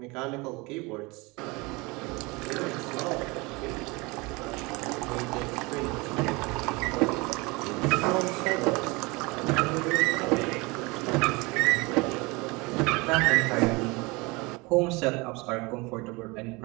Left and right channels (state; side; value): quieter; left; 25.3 dB